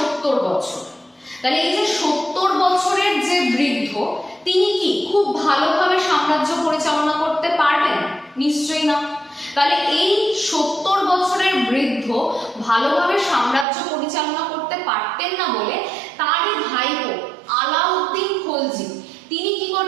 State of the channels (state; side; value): drops out; left; at 13.7 s